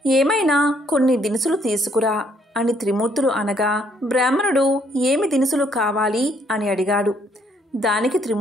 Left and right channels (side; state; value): both; normal; correlation 0.68